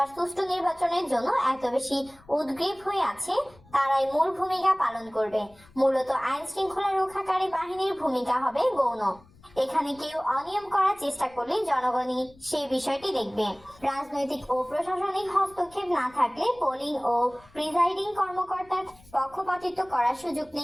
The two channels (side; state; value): left; noise; rumble, 26 dB below the sound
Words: সুষ্ঠু নির্বাচনের জন্য এত বেশি উদ্গ্রীব হয়ে আছে, তারাই মূল ভূমিকা পালন করবে। মূলত আইন শৃঙ্খলা রক্ষাকারী বাহিনীর ভূমিকা হবে গৌণ। এখানে কেউ অনিয়ম করার চেষ্টা করলে জনগণই সেই বিষয়টি দেখবে। রাজনৈতিক ও প্রশাসনিক হস্তক্ষেপ না থাকলে পোলিং ও প্রিজাইডিং কর্মকর্তার পক্ষপাতিত্ব করার সুযোগ